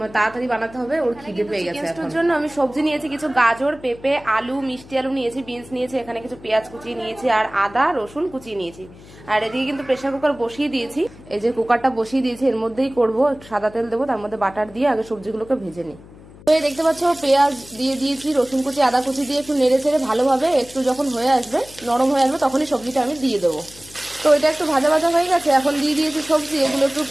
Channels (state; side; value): noise; left; hum, 21 dB below the sound